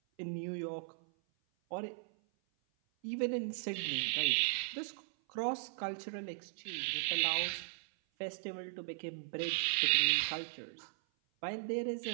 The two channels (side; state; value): left; silent; 53 dB below the other